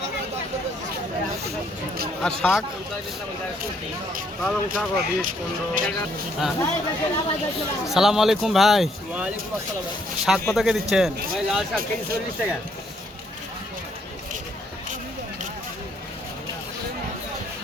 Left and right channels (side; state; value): both; normal; correlation 0.69